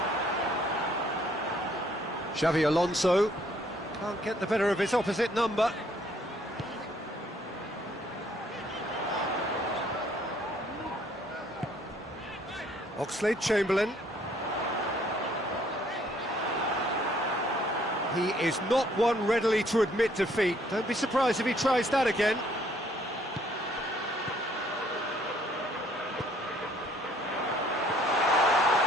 Xavi Alonso can't get the better of his opposite number. Oxlade-Chamberlain. He is not one readily to admit defeat. Don't be surprised if he tries that again.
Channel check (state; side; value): normal; both; correlation 0.63